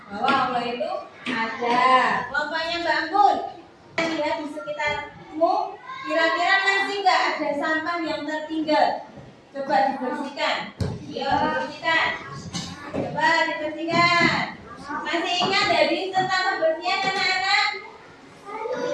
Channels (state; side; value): identical; both; correlation 1.00